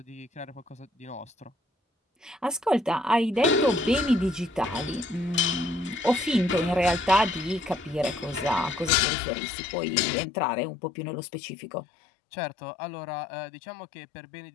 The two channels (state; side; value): drops out; right; at 8.9 s